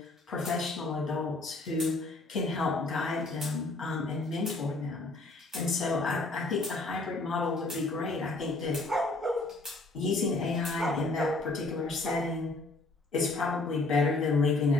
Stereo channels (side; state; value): right; quieter; 3.2 dB